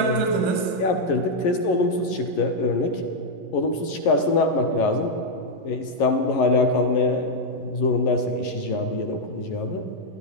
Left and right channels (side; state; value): right; late; 11 ms